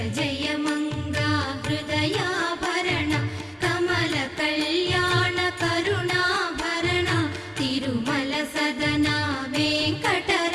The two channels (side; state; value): both; identical; correlation 1.00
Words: జయ మంగ హృదయాభరణ కమల కళ్యాణ కరుణాభరణ తిరుమల సదన